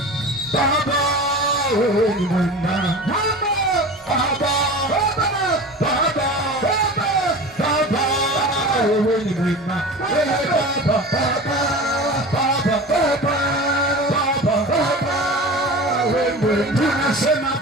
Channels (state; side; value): normal; both; correlation 0.34